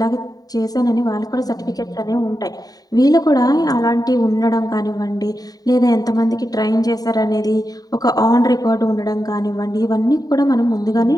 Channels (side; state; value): right; late; 0.18 ms